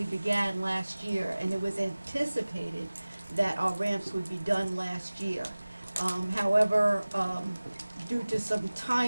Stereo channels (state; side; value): inverted; both; correlation -0.99